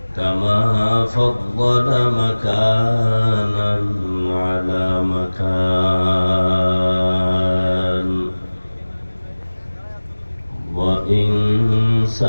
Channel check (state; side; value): inverted; both; correlation -1.00